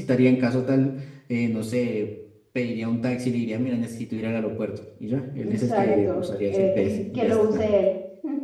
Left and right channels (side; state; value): both; identical; correlation 1.00